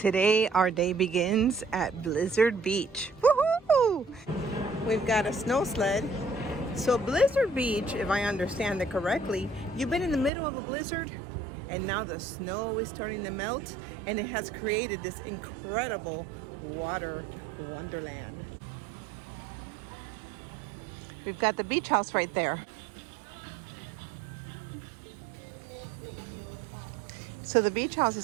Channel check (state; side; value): drops out; left; at 10.3 s